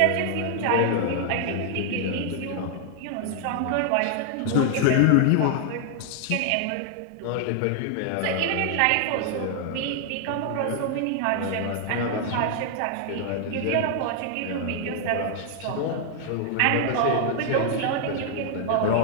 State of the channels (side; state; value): both; different; correlation 0.00